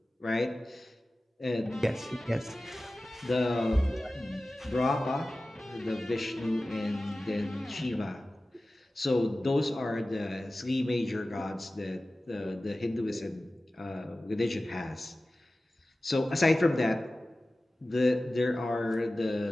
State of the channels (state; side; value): normal; both; correlation 0.96